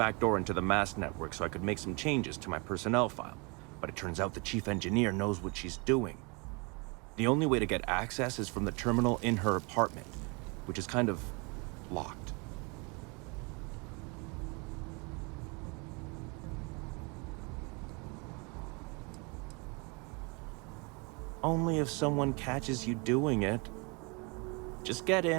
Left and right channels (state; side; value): quieter; left; 30.6 dB